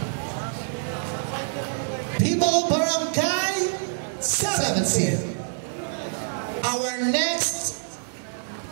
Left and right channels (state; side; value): silent; left; digital silence